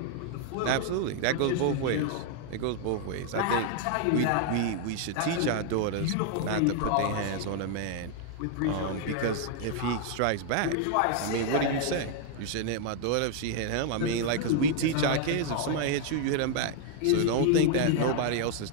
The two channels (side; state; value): both; different; correlation 0.00